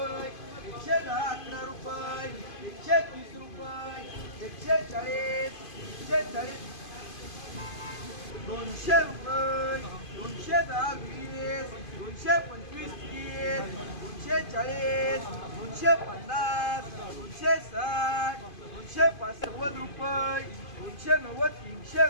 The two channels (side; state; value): right; late; 2.5 ms